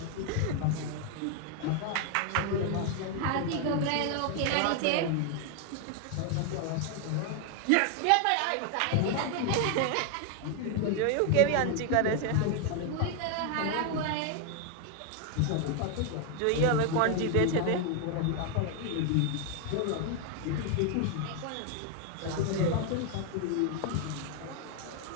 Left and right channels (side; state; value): both; different; correlation 0.01